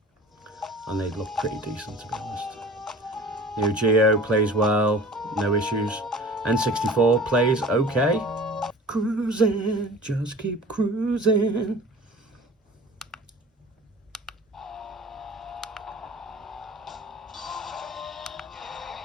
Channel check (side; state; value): both; normal; correlation 0.42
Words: And they look pretty decent, to be honest. Neo Geo plays well, no issues. N64 plays okay. Cruising, just keep cruising.